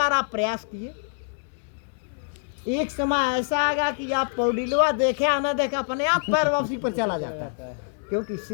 आप प्रयास किए। एक समय ऐसा आएगा कि आप पैडिलवा देखे या ना देखे अपने आप पैर वापसी पर चला जाता है, क्योंकि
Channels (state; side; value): silent; right; digital silence